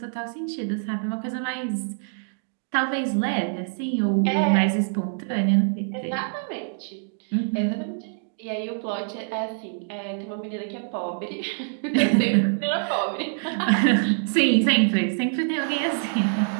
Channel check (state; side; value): silent; left; digital silence